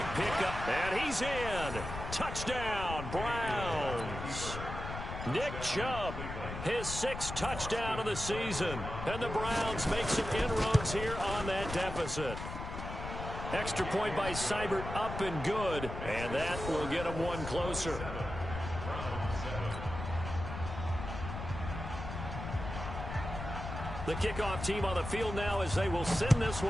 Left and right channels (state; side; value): noise; left; rumble, 7 dB below the sound